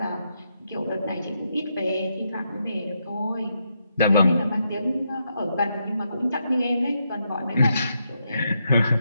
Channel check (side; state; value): both; inverted; correlation -0.81